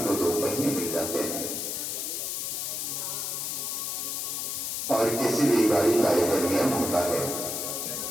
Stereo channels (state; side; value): noise; left; hiss, 2 dB below the sound